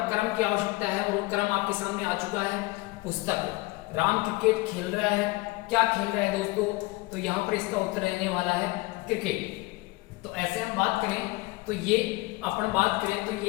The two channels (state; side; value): quieter; right; 22.3 dB